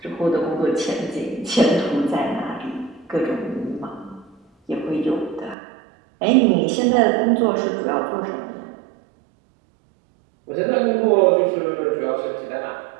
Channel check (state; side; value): drops out; left; at 5.6 s